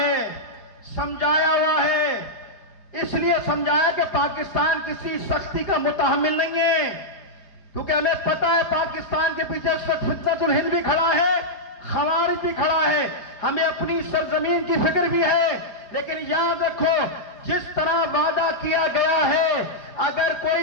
سمجھایا ہوا ہے. اس لیے سمجھایا کہ پاکستان کسی سختی کا متحمل نہیں ہے، کیونکہ ہمیں پتا ہے پاکستان کے پیچھے فتنۃ الہند بھی کھڑا ہے، خوارج بھی کھڑا ہے. ہمیں اپنی سرزمین کی فکر بھی ہے. لیکن یاد رکھو، جس طرح وعدہ کیا گیا ہے، اگر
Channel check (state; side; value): late; right; 4.9 ms